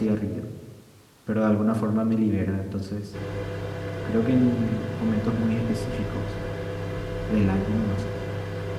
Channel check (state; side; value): identical; both; correlation 1.00